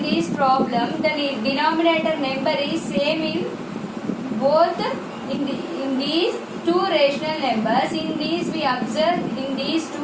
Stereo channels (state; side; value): identical; both; correlation 1.00